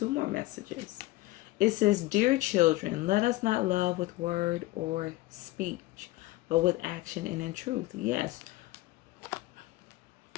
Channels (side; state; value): right; quieter; 18.7 dB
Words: more messages. It says, "Dear children, let us not love with word or speech, but with action and in truth." Yes.